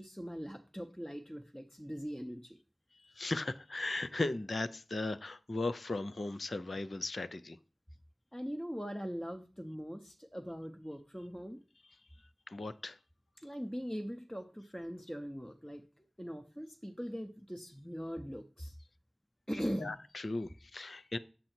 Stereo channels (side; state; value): both; normal; correlation 0.96